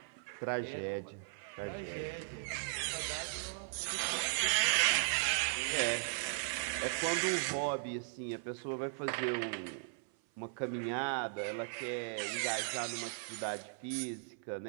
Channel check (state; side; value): silent; left; 53 dB below the other